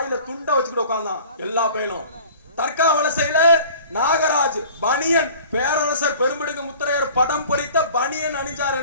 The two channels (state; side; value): inverted; both; correlation -0.46